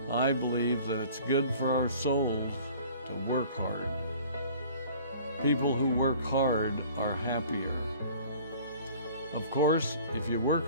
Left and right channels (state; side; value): inverted; both; correlation -0.49